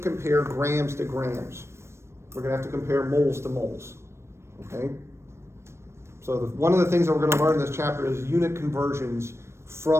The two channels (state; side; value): late; left; 0.13 ms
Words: compare grams to grams. We're gonna have to compare moles to moles, okay? So one of the things that we're gonna learn in this chapter is unit conversions